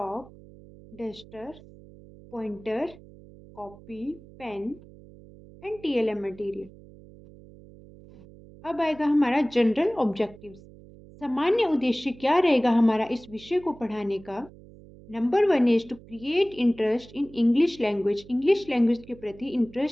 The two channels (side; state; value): right; noise; hum, 21 dB below the sound